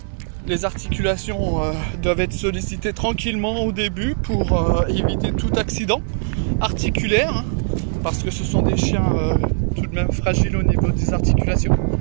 Les articulations doivent être sollicitées tranquillement au début pour éviter tout accident articulaire hein, parce que ce sont des chiens tout de même fragiles au niveau des articulations.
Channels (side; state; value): left; silent; 60 dB below the other